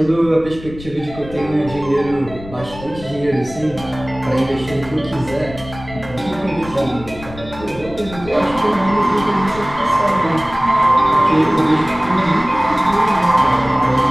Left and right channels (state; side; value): noise; left; rumble, 15 dB below the sound